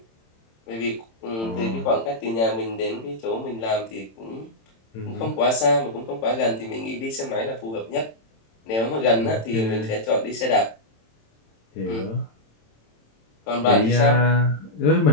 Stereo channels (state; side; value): late; right; 27 ms